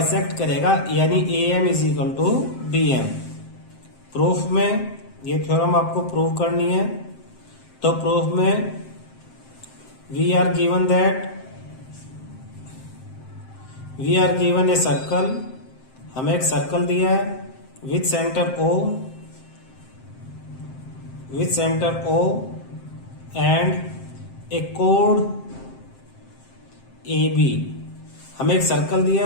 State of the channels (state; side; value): late; right; 7.7 ms